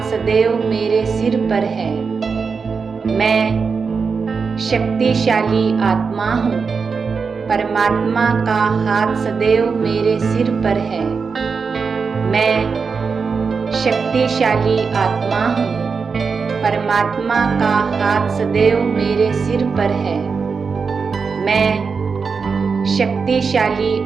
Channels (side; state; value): left; quieter; 5.2 dB